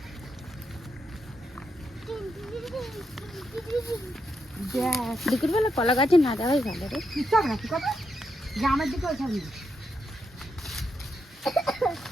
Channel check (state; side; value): normal; both; correlation 0.82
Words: দুপুর বেলা কলা গাছে না যাওয়াই ভালো রে। চল না, কি কথা গ্রামের দিকে ওইখানে